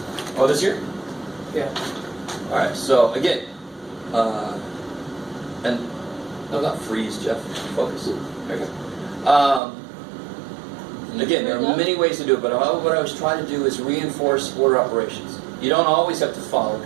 Oh, this here? Yeah. Alright, so again, and no, not freeze, Jeff. Focus. There you go. Again, there are many ways to do it, but what I was trying to do is reinforce order operations. You don't always have to follow,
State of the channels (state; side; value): drops out; left; at 9.6 s